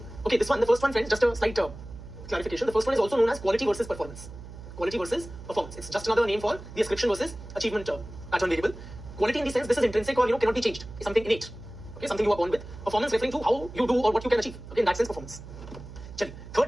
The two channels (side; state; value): right; noise; hum, 14 dB below the sound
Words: okay, this one, the first one, friends, just a slight clarification. The first one is also known as quality versus performance. Quality versus performance. It's just another name for the ascription versus achievement pattern variable. Quality in the sense this is intrinsic or cannot be changed. It's something innate. Okay, something you are born with. Performance referring to how you do or what you can achieve. Okay, in that sense, performance. Chali.